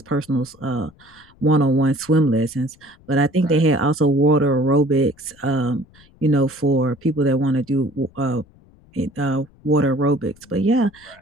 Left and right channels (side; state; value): left; noise; rumble, 28 dB below the sound